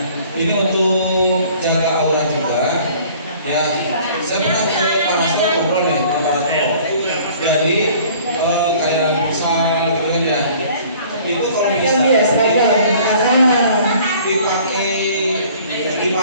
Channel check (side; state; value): both; inverted; correlation -0.52